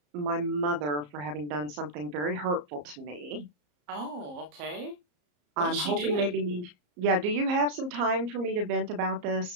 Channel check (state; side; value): late; left; 34 ms